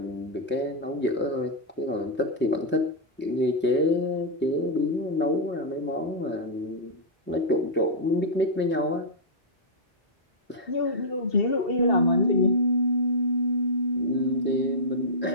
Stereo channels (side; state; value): both; normal; correlation -0.11